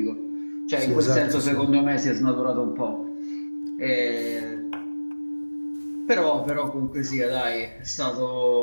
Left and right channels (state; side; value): inverted; both; correlation -1.00